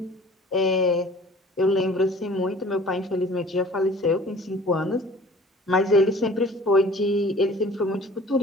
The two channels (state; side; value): normal; both; correlation 0.48